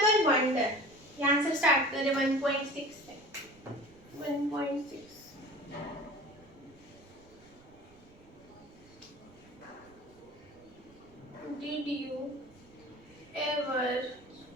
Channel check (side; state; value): right; noise; rumble, 27 dB below the sound